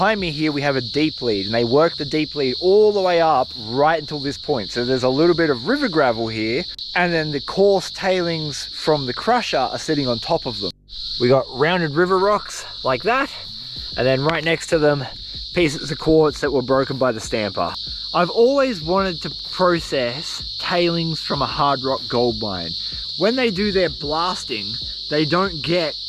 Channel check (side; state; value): both; identical; correlation 1.00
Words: me here we have a deep lead, and they worked the deep lead all the way up right until this point. So there's a little bit of river gravel here, and then the coarse tailings from the crusher are sitting on top of them. We got rounded river rocks like that, and then right next to them pieces of quartz that were broken by the stamper. I've always wanted to process tailings from a hard rock gold mine. When they do their blasting, they don't get